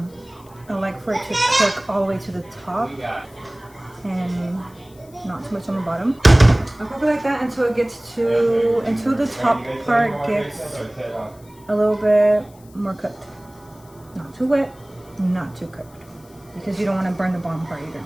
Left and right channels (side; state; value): left; noise; hiss, 27 dB below the sound